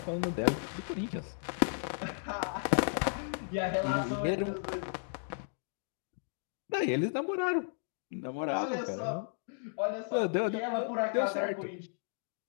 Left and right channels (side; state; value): right; silent; digital silence